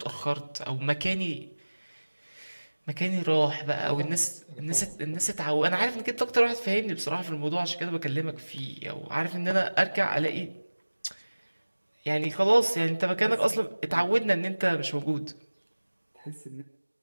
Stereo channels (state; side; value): inverted; both; correlation -1.00